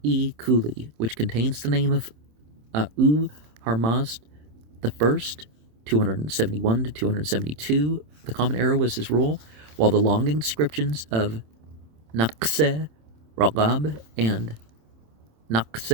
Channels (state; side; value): late; left; 26 ms